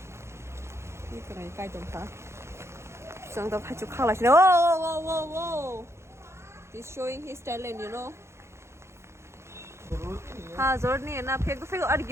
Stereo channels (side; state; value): left; late; 0.13 ms